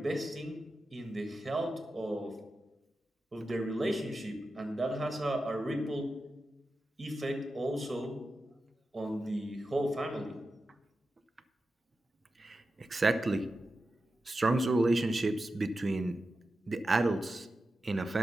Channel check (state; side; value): normal; both; correlation 0.91